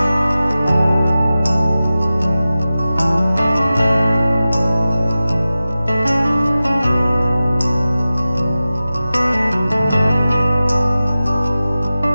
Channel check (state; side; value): inverted; both; correlation -0.95